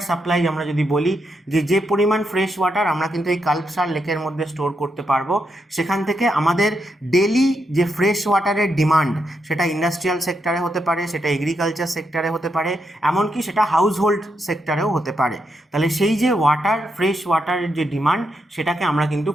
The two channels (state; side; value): normal; both; correlation 0.82